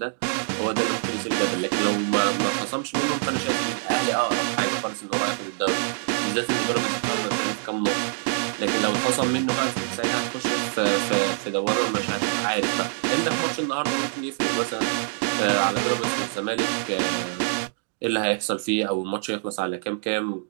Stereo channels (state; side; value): silent; left; digital silence